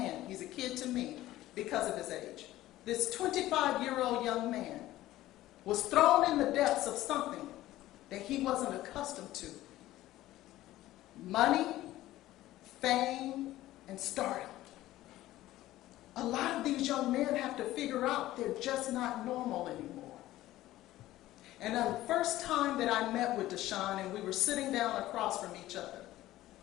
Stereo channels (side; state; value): right; quieter; 15.5 dB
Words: he's a kid to me because of his age. This 25-year-old young man was thrown in the depths of something that he wasn't accustomed to. Money, fame, and stardom. A lot of these young men have to figure out they're just not normal anymore. And the first time that I met with Deshaun and we were sitting down across from each other,